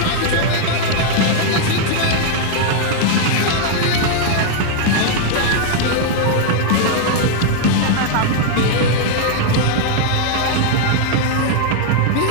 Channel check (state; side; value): different; both; correlation -0.01